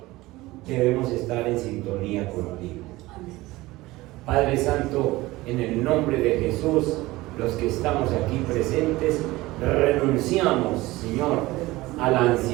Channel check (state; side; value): quieter; left; 19.3 dB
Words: debemos estar en sintonía contigo. Padre Santo, en el nombre de Jesús, los que estamos aquí presentes, renunciamos, Señor, a la